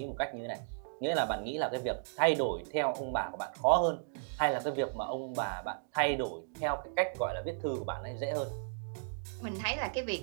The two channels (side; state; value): left; silent; digital silence